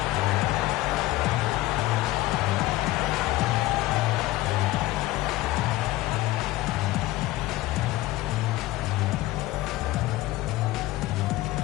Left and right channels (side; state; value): right; quieter; 17.3 dB